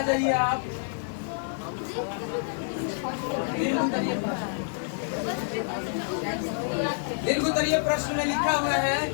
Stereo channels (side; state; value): right; silent; digital silence